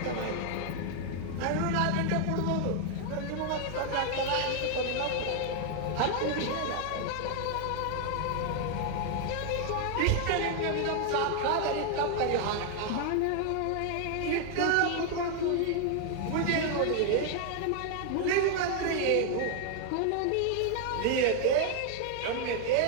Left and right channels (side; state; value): both; different; correlation 0.00